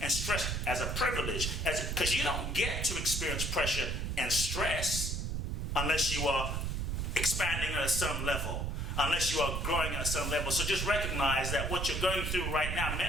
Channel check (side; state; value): right; noise; rumble, 1 dB below the sound